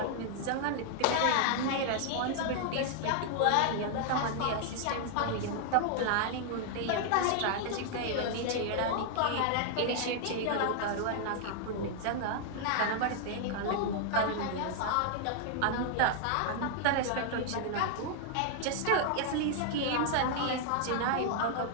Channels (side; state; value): both; different; correlation 0.00